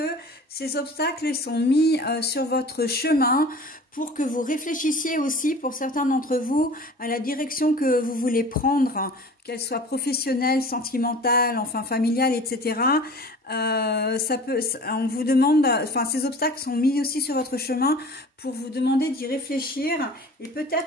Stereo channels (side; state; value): both; normal; correlation 0.42